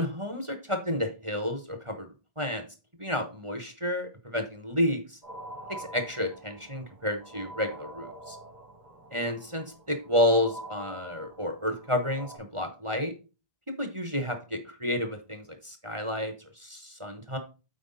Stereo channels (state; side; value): late; left; 1.4 ms